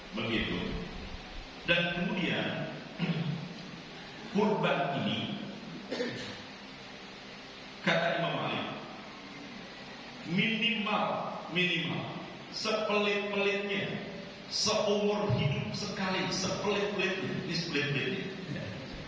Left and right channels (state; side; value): identical; both; correlation 1.00